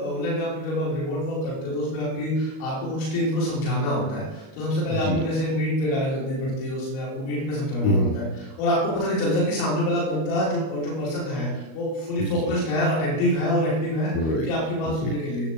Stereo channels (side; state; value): right; late; 38 ms